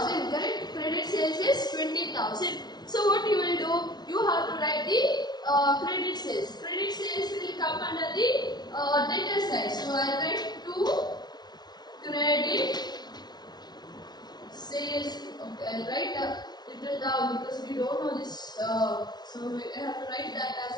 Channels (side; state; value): right; late; 0.19 ms